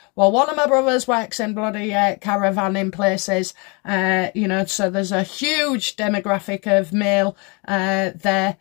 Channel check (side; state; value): right; quieter; 31.1 dB